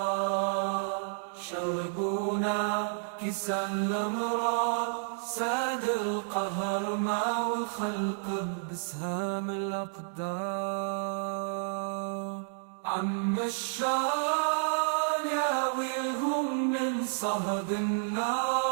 شربونا كيسا الأمراض ساد القهر مع الخلق بسهام الأقدار. عم الشار يا ويلهم من صهد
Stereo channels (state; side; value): silent; left; digital silence